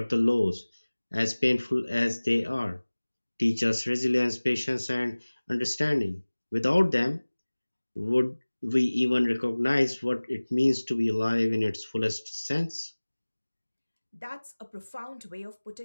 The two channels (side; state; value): both; inverted; correlation -1.00